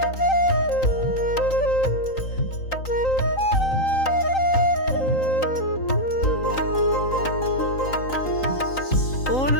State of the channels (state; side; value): late; right; 3.9 ms